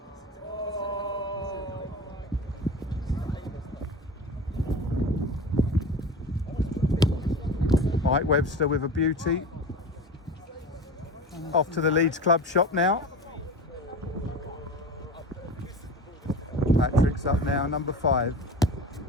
Mike Webster with a beauty. Off to the Leeds Club shop now. Patrick's up now, number 5.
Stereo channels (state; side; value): normal; both; correlation 0.32